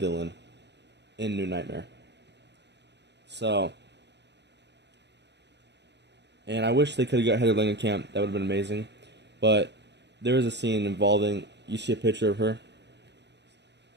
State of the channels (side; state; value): left; late; 0.50 ms